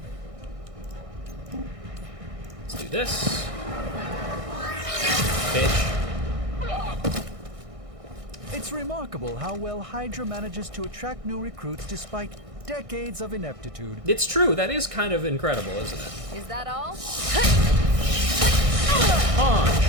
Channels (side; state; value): left; late; 1.6 ms